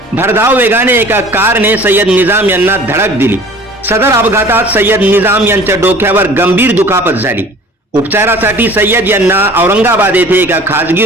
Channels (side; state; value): both; normal; correlation 0.46